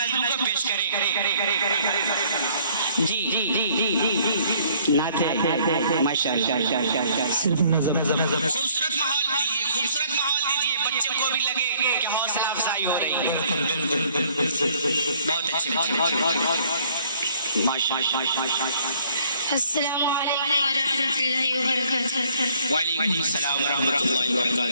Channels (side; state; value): both; inverted; correlation -0.62